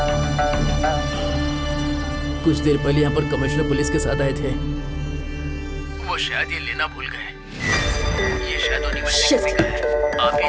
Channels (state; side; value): identical; both; correlation 1.00